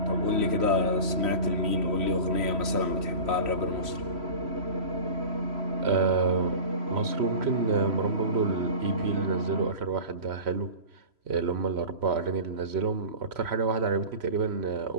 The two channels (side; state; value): left; late; 3.0 ms